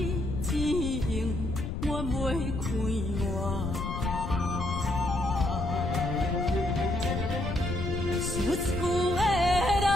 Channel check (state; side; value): noise; left; rumble, 4 dB below the sound